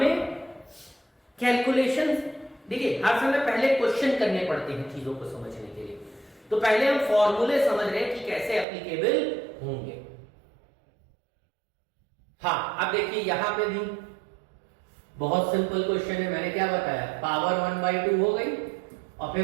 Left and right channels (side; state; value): left; drops out; at 8.7 s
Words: कैलकुलेशन, देखिए हर समय पहले क्वेश्चन करने पड़ते हैं चीजों को समझने के लिए, तो पहले हम फॉर्मूले समझ रहे हैं कि कैसे एप्लीकेबल होंगे। हाँ, अब देखिए यहां पे भी बहुत सिंपल क्वेश्चन है, मैंने क्या बताया, पावर 1/2 हो गई, और